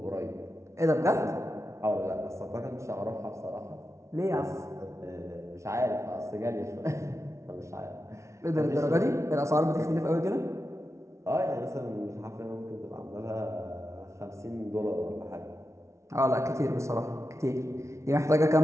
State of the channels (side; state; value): left; late; 0.14 ms